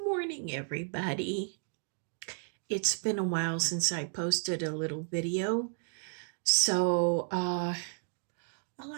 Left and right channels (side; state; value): left; silent; 56 dB below the other